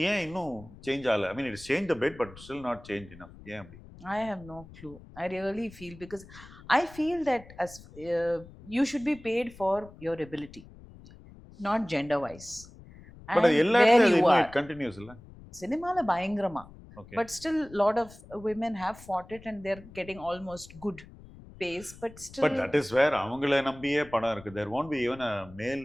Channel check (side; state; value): left; noise; rumble, 19 dB below the sound